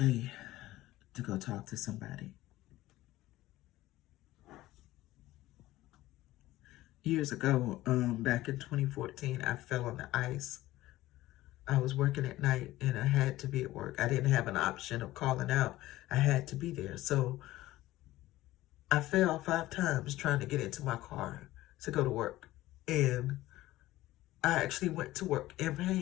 to go talk to somebody. Years ago, back in 2014, I fell on the ice. I was working at night and I had to be at work. I didn't have an option of calling out. I had to be there. So I fell 5 times trying to get into my car to go to work. And I actually went to work in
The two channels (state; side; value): quieter; right; 16.5 dB